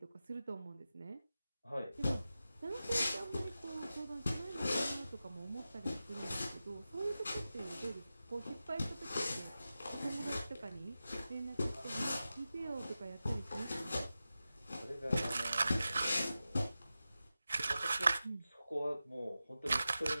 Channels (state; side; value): inverted; both; correlation -0.93